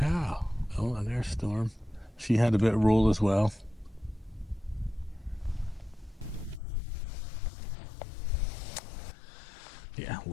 Oh, and there's Storm. She had a bit of roll as well. Yeah,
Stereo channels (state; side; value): drops out; right; at 6.6 s